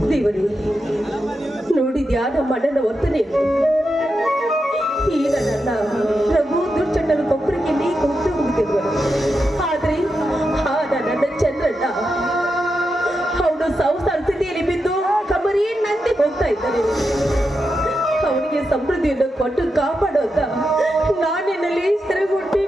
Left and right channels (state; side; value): normal; both; correlation 0.87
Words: ದೇವರೇ, ನೋಡಿದ್ಯಾ ನಮ್ಮ ಅಣ್ಣನ ವರ್ತನೆ? ಈಗ ನನ್ನ ಪ್ರಭು ದುರ್ಚಂಡನು ಕೊಬ್ಬರಿಗೆ ನೀ ಕೊಟ್ಟು ಹೋಗುತ್ತಿರುವನು. ಆದ್ರೆ ನನ್ನ ಚಂದ್ರಣ್ಣ ಅವನು ಸಂಸಾರ ಸ್ಥಿತಿಯಲ್ಲಿ ಬಿದ್ದು ಕಮರಿಯನ್ನಂತೆ ಹೋಗ್ತಾ ಇದ್ದಾನೆ. ಅವನಿಗೆ ಸಮೃದ್ಧಿಯನ್ನು ಕೊಟ್ಟು ಕಾಪಾಡೋದ ನಾನಿನಲ್ಲಿ ಸೆರೆಗೊಟ್ಟಿ